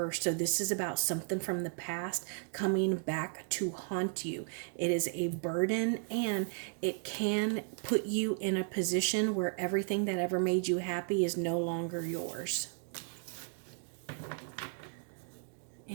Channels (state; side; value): silent; left; 55 dB below the other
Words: So this is about something from the past coming back to haunt you. It is a burden, and it can put you in a position where everything that ever made you happy is no longer yours.